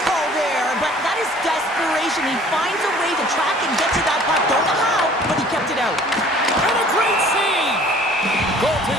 call there, but that is desperation. He finds a way to track and get to that puck. Don't know how, but he kept it out. And a great save.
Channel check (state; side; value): normal; both; correlation 0.52